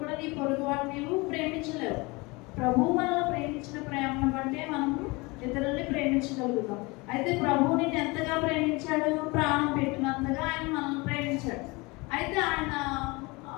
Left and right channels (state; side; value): quieter; right; 25.4 dB